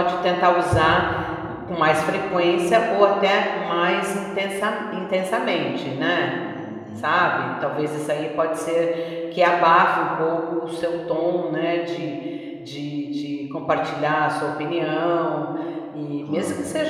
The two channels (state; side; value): identical; both; correlation 1.00